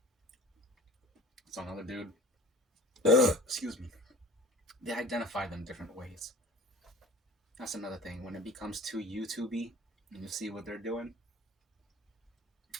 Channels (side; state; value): both; normal; correlation 0.42